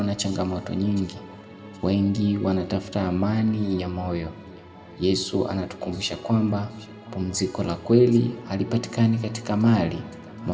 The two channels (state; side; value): identical; both; correlation 1.00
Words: na changamoto nyingi, wengi wanatafuta amani ya moyo. Yesu anatukumbusha kwamba pumziko la kweli halipatikani katika mali,